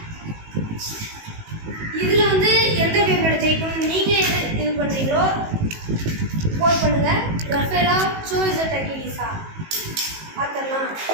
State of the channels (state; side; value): late; left; 19 ms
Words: இதில் வந்து எந்த பேப்ளேட் ஜெயிக்கணும்னு நீங்கள் இது பண்ணுறீங்களோ போட் பண்ணுங்க. ரஃபேலா சூஸ் டெக்கிலிஸா பார்த்துடலாம்.